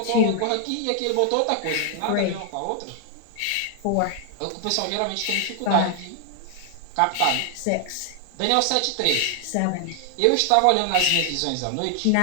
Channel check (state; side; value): different; both; correlation 0.00